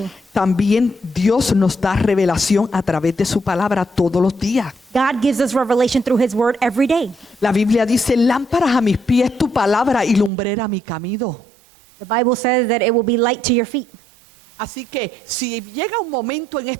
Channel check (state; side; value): drops out; left; at 10.3 s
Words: También Dios nos da revelación a través de su palabra todos los días. God gives us revelation through His Word every day. La Biblia dice, lámparas a mis pies tu palabra y lumbrera a mi camino. The Bible says that it will be light to your feet. Así que si llega un momento en